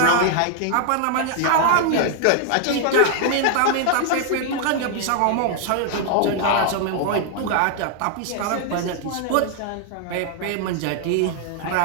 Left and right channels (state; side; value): different; both; correlation 0.00